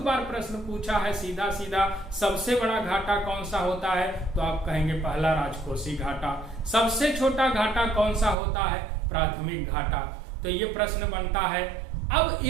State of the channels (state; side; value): drops out; left; at 8.3 s